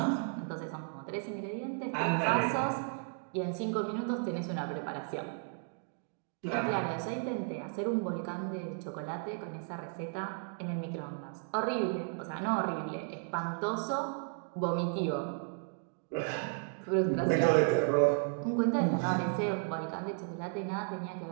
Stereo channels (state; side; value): silent; left; 55 dB below the other